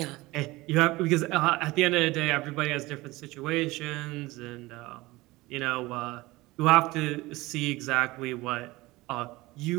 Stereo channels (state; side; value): quieter; left; 20.4 dB